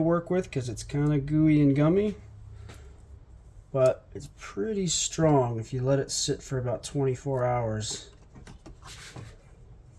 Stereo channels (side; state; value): both; identical; correlation 1.00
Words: work with because it's kind of gooey and gummy, but it's pretty strong if you let it sit for about 24 hours.